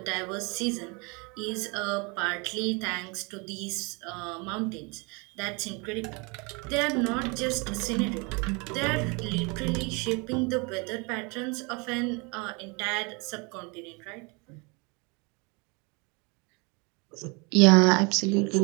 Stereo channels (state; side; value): quieter; left; 30.2 dB